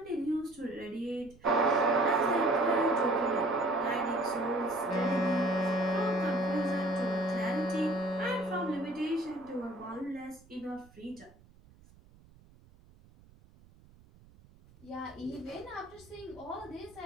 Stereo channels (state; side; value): noise; right; rumble, 26 dB below the sound